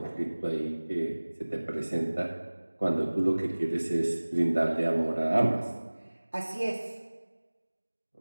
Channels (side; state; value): both; inverted; correlation -1.00